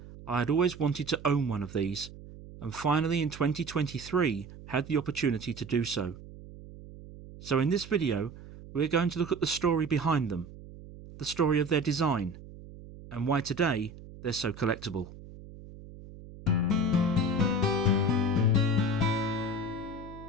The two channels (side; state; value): right; noise; hum, 16 dB below the sound